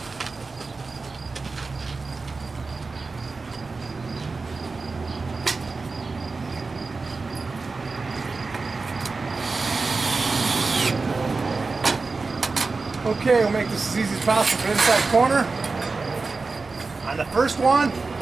Okay, we'll make this as easy as possible for the inside corner. On the first one,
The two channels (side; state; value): left; quieter; 4.0 dB